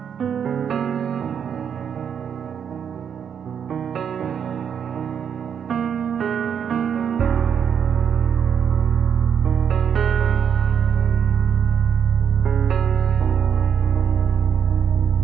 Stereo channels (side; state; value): left; quieter; 7.9 dB